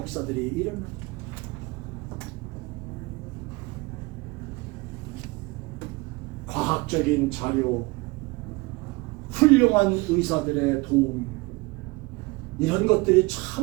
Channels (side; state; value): left; quieter; 24.3 dB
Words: 일어납니다. 과학적인 자료, 훌륭한 의사들의 도움, 이런 것들이